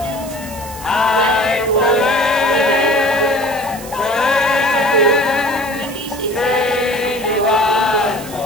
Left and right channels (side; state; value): right; noise; hiss, 15 dB below the sound